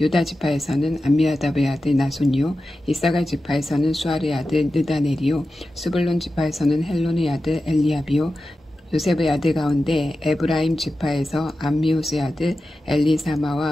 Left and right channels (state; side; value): normal; both; correlation 0.93